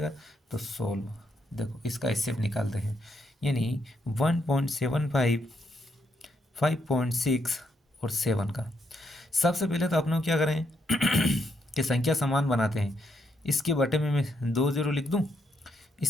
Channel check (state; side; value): normal; both; correlation 0.77